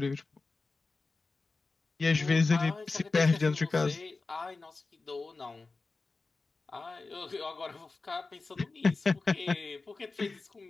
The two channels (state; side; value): quieter; right; 3.8 dB